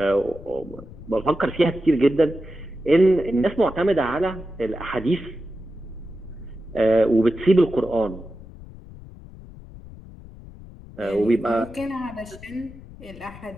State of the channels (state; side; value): noise; left; rumble, 17 dB below the sound